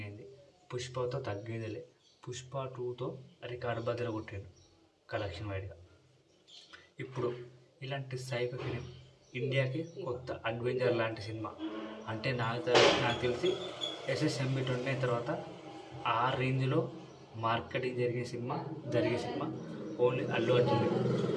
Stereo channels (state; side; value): identical; both; correlation 1.00